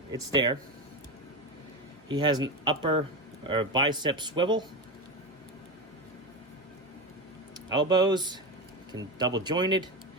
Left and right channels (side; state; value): both; normal; correlation 0.18